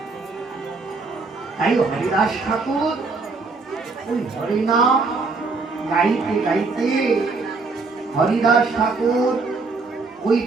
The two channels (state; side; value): quieter; left; 4.0 dB